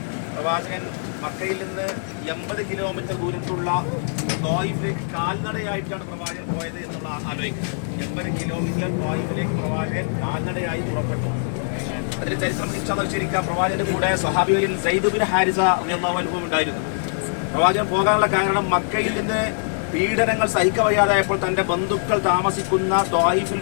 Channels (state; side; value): silent; right; digital silence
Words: പ്രവാചകൻ മക്കയിൽ നിന്ന് 80 കിലോമീറ്റർ ദൂരത്തുള്ള ത്വായിഫിലേക്ക് കാൽനടയായിട്ടാണ് പ്രവാചകൻ പോയത് എന്നുള്ള ആലോചിക്കുക. 80 കിലോമീറ്റർ ത്വായിഫിലേക്ക് പ്രവാചകൻ കാൽനടയായി പുറപ്പെട്ടു. അതിന് ചരിത്രം ശരിക്കും പ്രവാചകന്റെ കൂടെ സ്വഹാബികളിൽ സയ്യിദ് ബിൻ ഹാരിസ റളിയല്ലാഹു അൻഹു ഉണ്ടായിരുന്നു. പ്രവാചകൻ പോകാനുള്ള കാരണം മക്കയിൽ നിന്ന് പീഡനങ്ങൾ സഹിക്കവയ്യാതായപ്പോൾ തന്റെ ബന്ധുക്കൾ താമസിക്കുന്ന ത്വായിഫിൽ